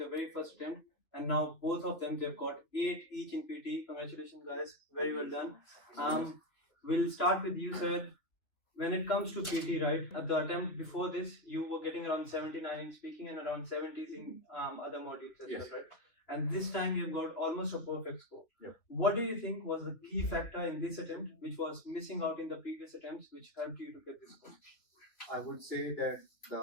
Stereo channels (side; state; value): right; late; 3.0 ms